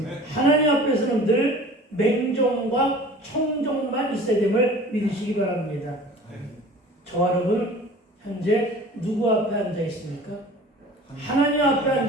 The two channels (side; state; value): both; normal; correlation 0.43